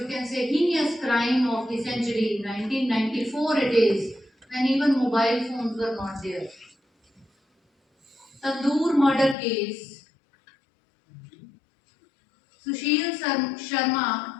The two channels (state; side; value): drops out; right; at 9.3 s